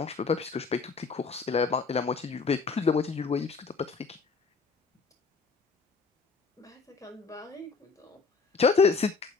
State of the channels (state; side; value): quieter; right; 4.8 dB